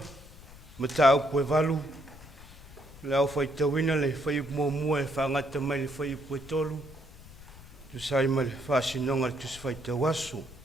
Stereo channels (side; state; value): left; noise; rumble, 19 dB below the sound